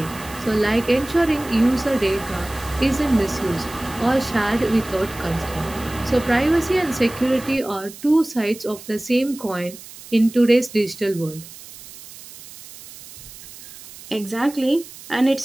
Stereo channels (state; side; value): noise; right; hiss, 17 dB below the sound